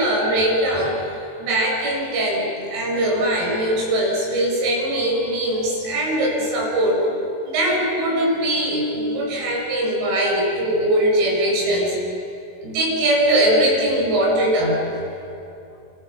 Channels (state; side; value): late; left; 22 ms